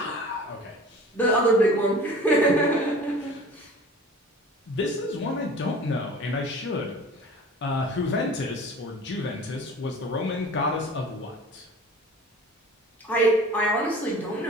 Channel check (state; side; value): normal; both; correlation 0.42